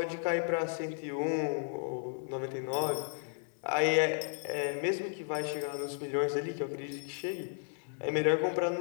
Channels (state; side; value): silent; right; 55 dB below the other